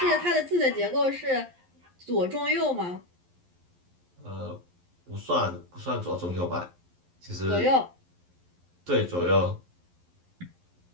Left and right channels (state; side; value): late; left; 11 ms